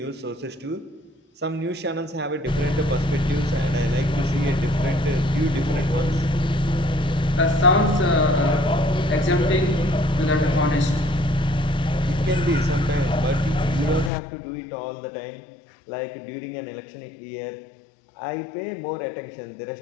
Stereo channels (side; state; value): right; drops out; at 14.1 s